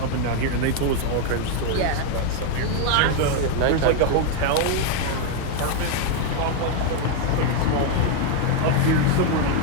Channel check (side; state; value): both; different; correlation 0.01